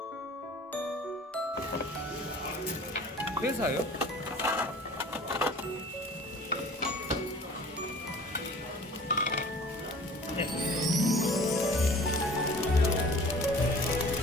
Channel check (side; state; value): both; normal; correlation 0.46